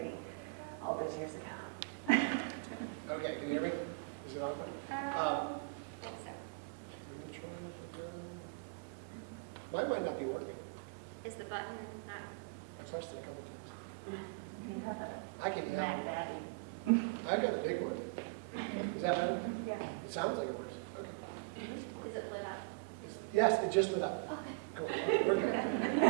all those years ago. Okay, can you hear me? Is it on? Mine might not be working. Is the button not? I touched it a couple times. You have I a can. Mac Daddy. I got a big one. Is that better? Yeah. It sounds like it works. Okay. Is it lit up? Yes, it just lit up. Okay. Cool. Okay, we're good.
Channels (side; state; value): left; quieter; 29.7 dB